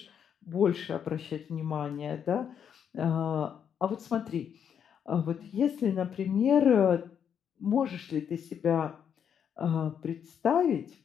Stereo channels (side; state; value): right; quieter; 8.1 dB